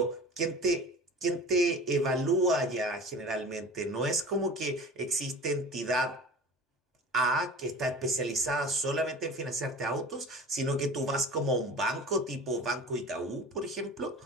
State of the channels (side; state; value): both; normal; correlation 0.38